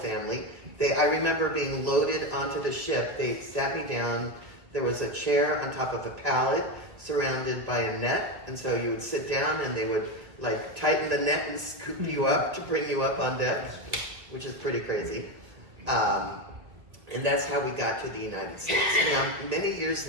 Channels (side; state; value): left; late; 1.8 ms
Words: I remember being loaded onto the ship. They sat me down. There was a chair on top of a pallet surrounded by a net, and so you would sit down and they would like tighten the net and scoop you up to bring you up on deck, which is pretty crazy. And that's how we got to the United States. Now, many years